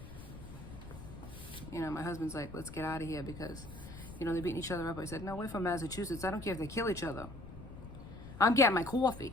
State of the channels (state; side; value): noise; left; rumble, 13 dB below the sound